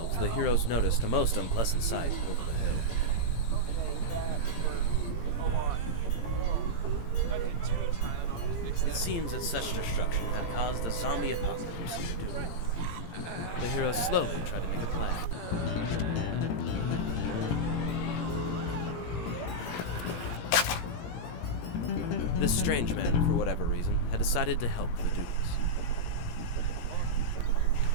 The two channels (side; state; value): right; late; 17 ms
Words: the heroes noticed a most unpleasant sight. Okay, that hurt a lot. Oh, I get 2 Tylenol to fix It that. seems that such destruction had caused a zombie apocalypse. The heroes slowly tried. This strange man, for whatever reason, had decided to help the dudes.